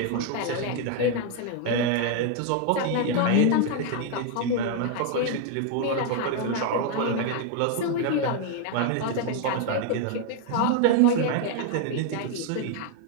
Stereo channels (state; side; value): different; both; correlation 0.01